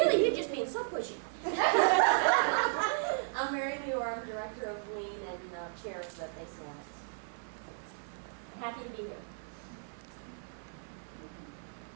you're just being so pushy. I'm Mary Muir, I'm director of Lean and chair of the Base Alliance. Happy to be here.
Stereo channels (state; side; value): silent; left; 55 dB below the other